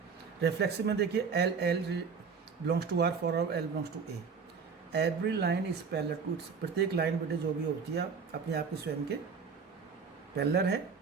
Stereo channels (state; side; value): quieter; left; 5.6 dB